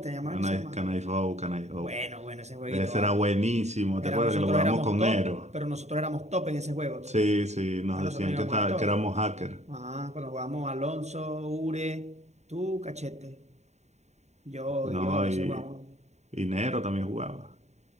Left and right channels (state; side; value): late; left; 0.32 ms